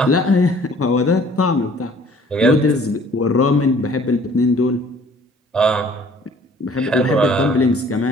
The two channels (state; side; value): normal; both; correlation 0.54